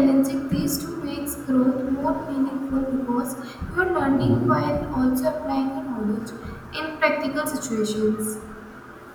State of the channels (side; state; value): both; identical; correlation 1.00